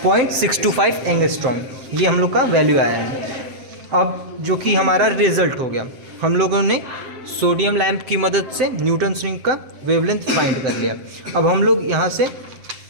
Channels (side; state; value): left; late; 7.6 ms